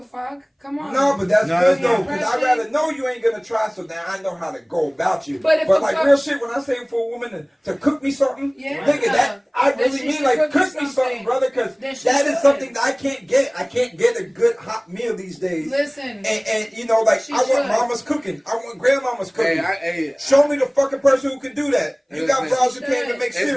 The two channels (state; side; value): identical; both; correlation 1.00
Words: fuck? Come on. No, but that's good though, because I'd rather know you ain't gonna try, so now I know how to go about you. But like real shit, when I say for a woman to cook me something, nigga, that I really mean like cook me something, brother, because that is something that I can't get. I can't get a good hot meal these days. Listen, and you know, like I want mama's cooking. I want grandmama's cooking. Show me the fucking person who can do that. You got bras who can't even make